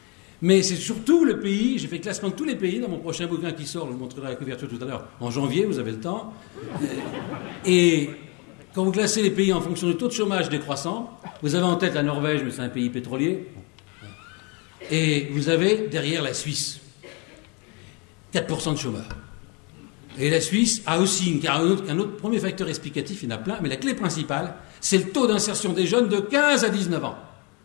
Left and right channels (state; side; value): quieter; right; 31.3 dB